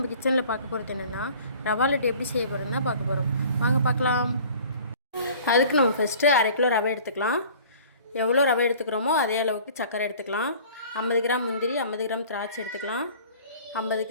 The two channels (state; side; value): inverted; both; correlation -0.48